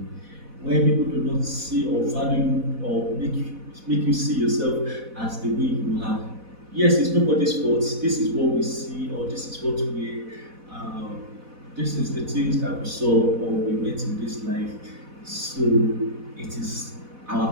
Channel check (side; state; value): left; late; 4.1 ms